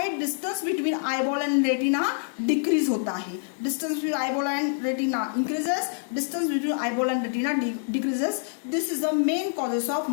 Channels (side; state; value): right; silent; digital silence